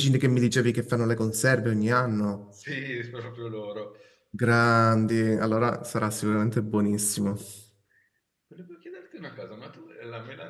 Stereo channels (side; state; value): both; identical; correlation 1.00